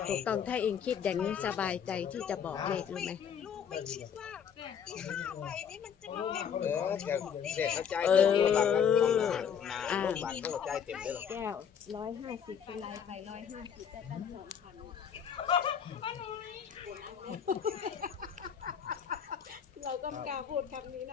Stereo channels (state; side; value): quieter; right; 7.8 dB